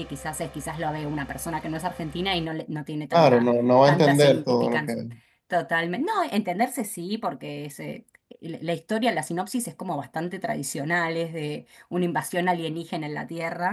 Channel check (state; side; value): identical; both; correlation 1.00